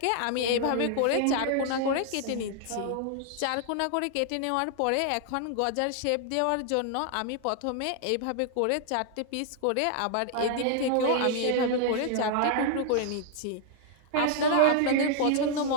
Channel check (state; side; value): different; both; correlation 0.00